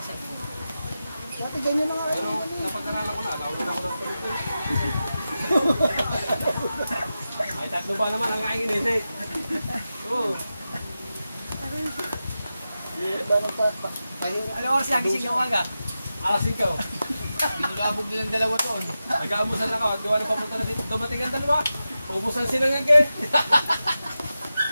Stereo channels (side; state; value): both; inverted; correlation -0.92